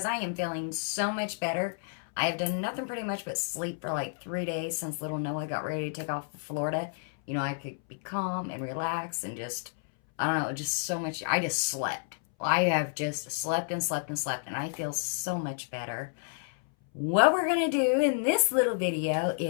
I am feeling so much better. I have done nothing pretty much but sleep for like 3 days since little Noah got ready to take off for Florida. You know, I could be calm and relax and just, I don't know, just so much. I just slept. I have just slept and slept and slept, and I feel so much better. What we're going to do in this little video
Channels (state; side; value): silent; right; 58 dB below the other